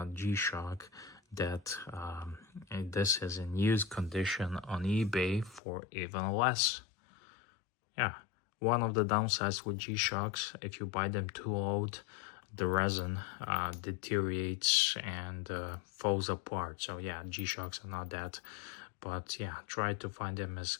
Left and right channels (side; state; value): right; drops out; at 5.6 s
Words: G-Shock that this is in used condition on eBay for even less. Yeah, one of the downsides with G-Shocks, if you buy them too old, the resin deteriorates and falls apart. So yeah, G-Shocks are not that, but yeah, try to find them as